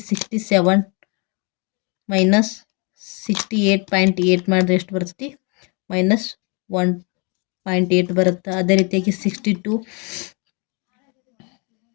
67 ಮೈನಸ್ 68.8 ಮಾಡಿದ್ರೆ ಎಷ್ಟು ಬರ್ತೈತಿ ಮೈನಸ್ 1.8 ಬರುತ್ತೆ. ಅದೇ ರೀತಿಯಾಗಿ 62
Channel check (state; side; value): quieter; right; 32.8 dB